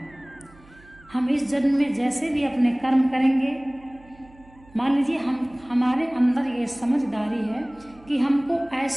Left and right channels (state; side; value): noise; right; hum, 26 dB below the sound